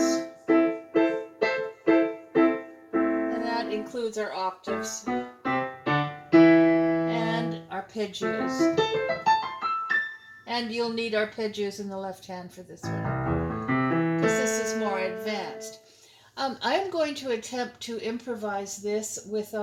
And that includes our octaves and arpeggios. And you'll need arpeggios in the left hand for this one, because this is more advanced. I'm going to attempt to improvise this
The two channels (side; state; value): both; identical; correlation 1.00